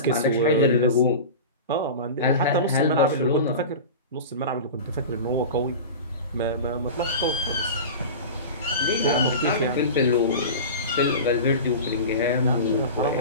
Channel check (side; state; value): both; inverted; correlation -0.30